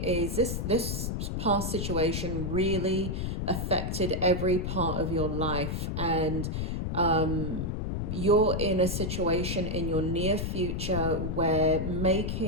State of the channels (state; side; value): noise; left; rumble, 2 dB below the sound